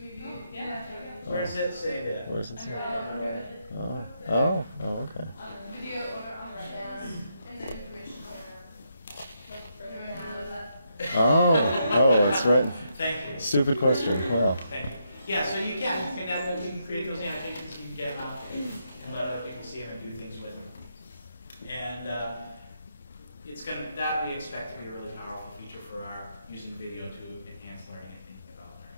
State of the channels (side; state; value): both; inverted; correlation -0.79